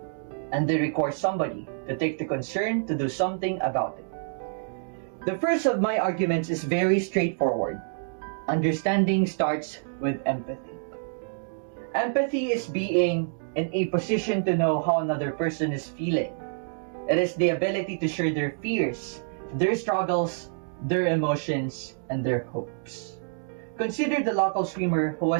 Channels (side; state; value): left; silent; digital silence